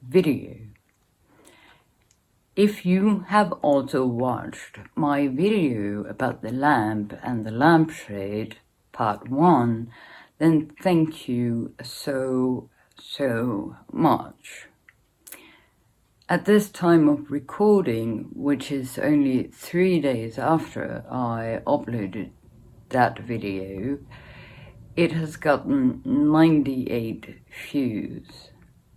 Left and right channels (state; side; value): identical; both; correlation 1.00